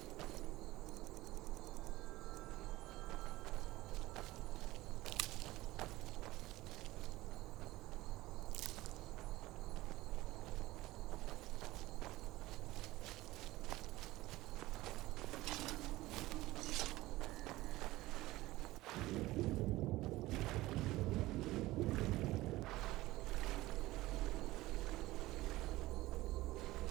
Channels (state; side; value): quieter; left; 18.0 dB